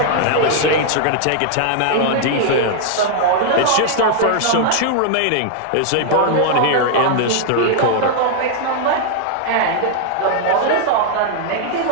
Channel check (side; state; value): both; different; correlation 0.00